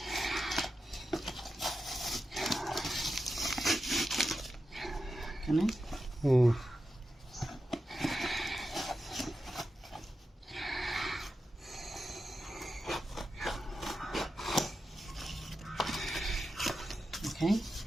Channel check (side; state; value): both; normal; correlation 0.90